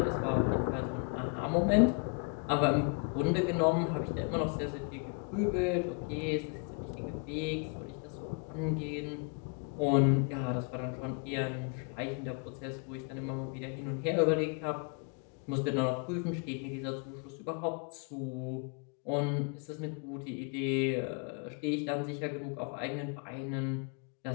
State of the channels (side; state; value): right; quieter; 36.6 dB